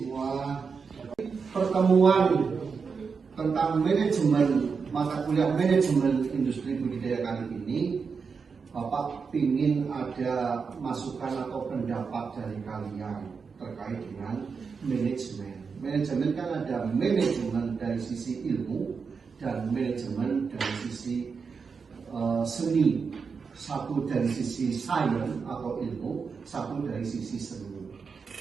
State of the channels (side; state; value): left; quieter; 5.4 dB